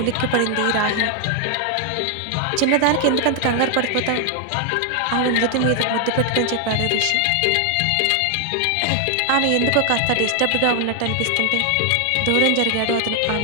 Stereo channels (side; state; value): both; different; correlation 0.00